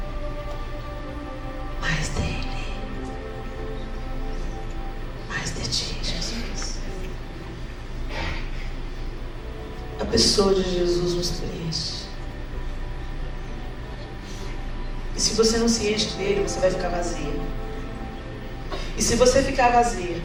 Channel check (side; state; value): both; identical; correlation 1.00